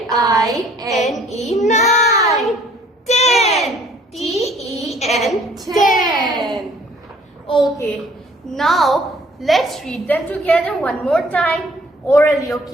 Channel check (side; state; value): both; normal; correlation 0.58